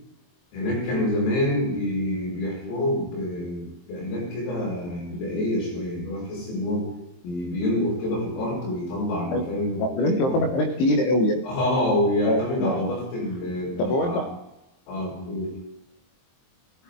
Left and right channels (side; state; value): right; late; 23 ms